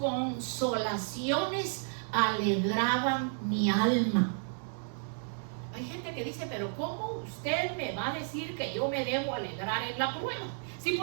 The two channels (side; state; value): left; silent; digital silence